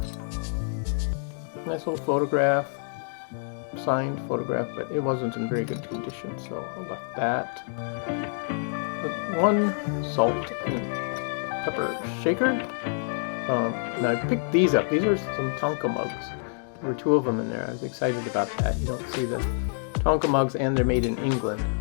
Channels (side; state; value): right; silent; 60 dB below the other